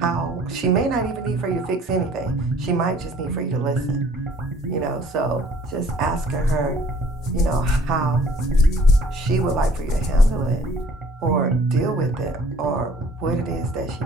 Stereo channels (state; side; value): normal; both; correlation 0.55